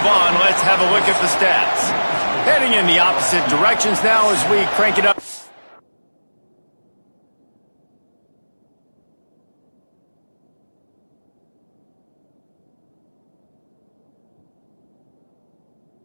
on, let's have a look at the stats. Heading in the opposite directions now as we crank it up.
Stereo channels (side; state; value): both; inverted; correlation -1.00